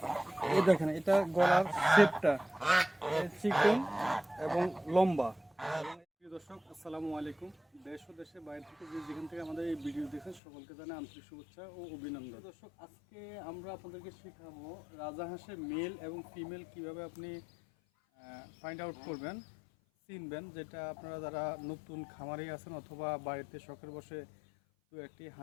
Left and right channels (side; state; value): right; drops out; at 10.4 s